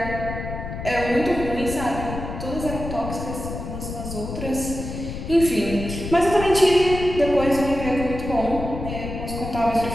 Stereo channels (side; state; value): left; noise; rumble, 7 dB below the sound